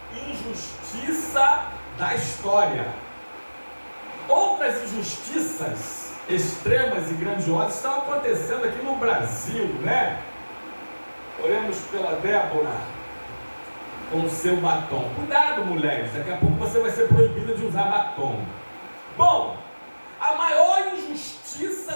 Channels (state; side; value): inverted; both; correlation -1.00